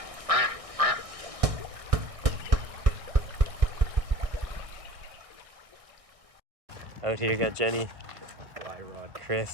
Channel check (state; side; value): late; left; 1.6 ms